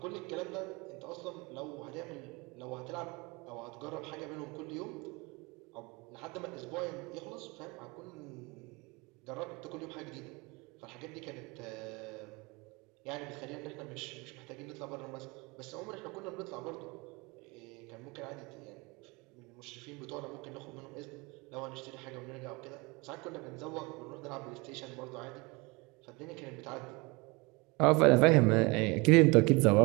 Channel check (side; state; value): left; quieter; 26.2 dB